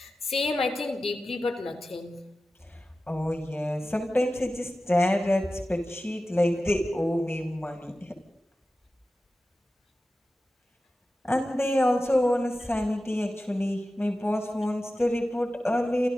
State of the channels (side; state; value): both; normal; correlation 0.94